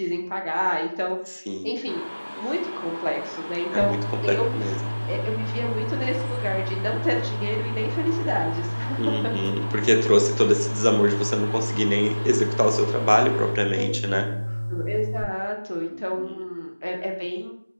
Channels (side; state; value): both; inverted; correlation -1.00